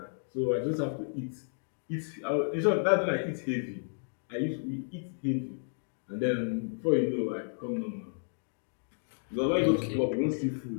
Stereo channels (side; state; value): right; silent; digital silence